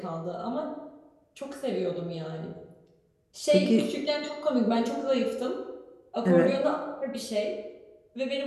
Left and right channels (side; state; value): both; identical; correlation 1.00